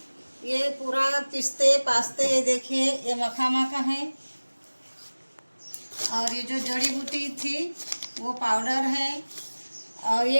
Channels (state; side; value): inverted; both; correlation -1.00